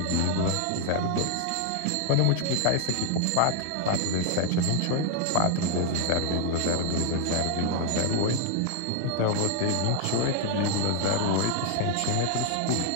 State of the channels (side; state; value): both; different; correlation 0.00